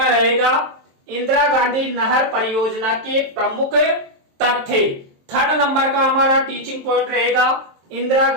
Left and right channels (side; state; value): left; late; 23 ms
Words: रहेगा इंदिरा गांधी नहर परियोजना के प्रमुख तथ्य। थर्ड नंबर का हमारा टीचिंग पॉइंट रहेगा इंदिरा